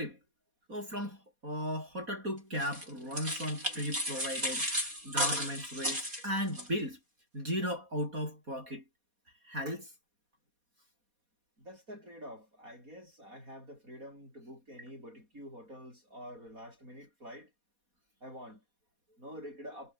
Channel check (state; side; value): late; left; 4.2 ms